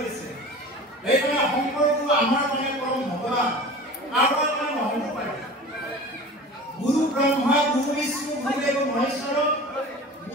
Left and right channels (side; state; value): both; normal; correlation 0.38